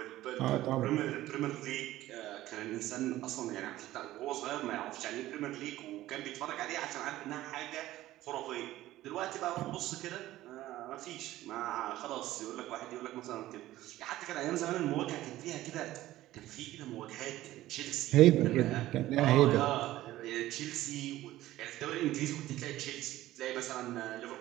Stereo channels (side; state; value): left; quieter; 15.3 dB